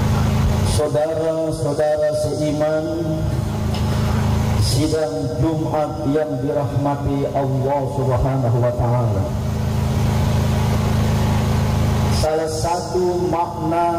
Saudara-saudara seiman, sidang Jumat yang dirahmati Allah Subhanahu wa Ta'ala, salah satu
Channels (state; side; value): identical; both; correlation 1.00